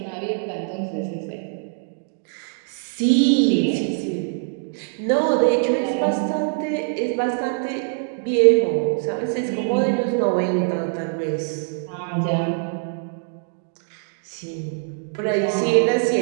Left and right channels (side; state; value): left; silent; digital silence